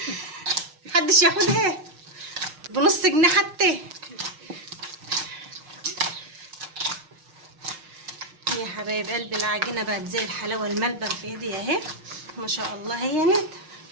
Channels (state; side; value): late; left; 6.5 ms